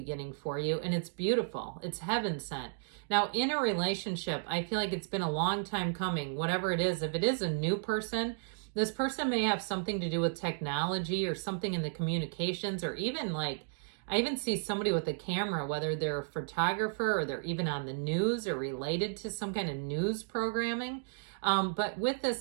for you, and it's beautiful. It's heaven sent. Now, in a relationship, I feel like it's been a long time coming, whatever it is. If it is a new person, this person may have something to do with technology or something in the communications, or even like, I even see somebody with a camera, whether they're a photographer or they're even on the news or related to some kind of news programming. But with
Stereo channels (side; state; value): left; silent; digital silence